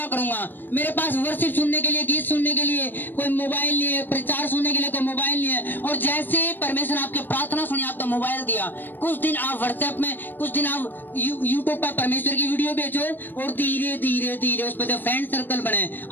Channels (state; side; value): late; right; 0.092 ms